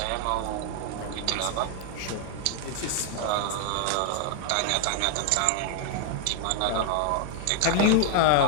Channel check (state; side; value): different; both; correlation 0.00